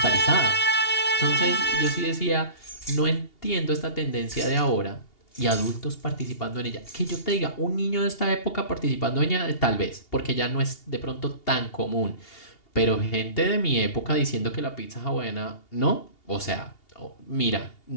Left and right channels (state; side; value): late; right; 2.8 ms